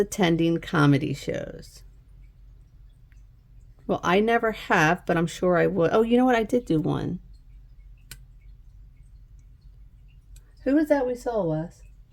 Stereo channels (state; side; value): identical; both; correlation 1.00